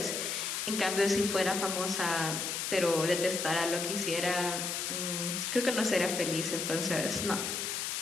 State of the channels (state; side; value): noise; left; hiss, 2 dB below the sound